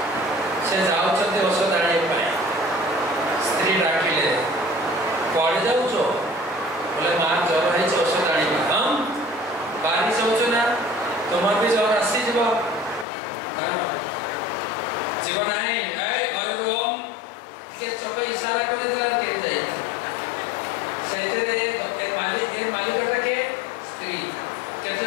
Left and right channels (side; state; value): right; drops out; at 13.1 s